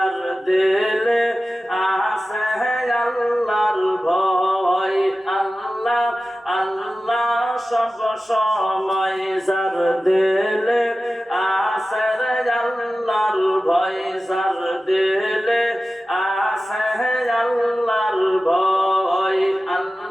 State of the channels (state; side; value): normal; both; correlation 0.95